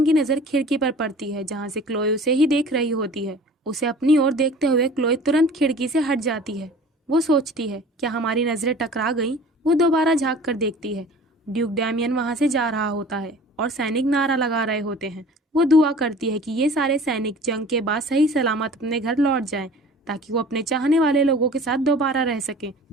की नजर खिड़की पर पड़ती है जहाँ से क्लोए उसे ही देख रही होती है। उसे अपनी ओर देखते हुए क्लोए तुरंत खिड़की से हट जाती है। वो सोचती है, क्या हमारी नजरें टकरा गईं? वो दोबारा झांक कर देखती है। ड्यूक डैमियन वहां से जा रहा होता है और सैनिक नारा लगा रहे होते हैं। वो दुआ करती है कि ये सारे सैनिक जंग के बाद सही सलामत अपने घर लौट जाएं, ताकि वो अपने चाहने वाले लोगों के साथ दोबारा रह सके।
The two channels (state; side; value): normal; both; correlation 0.44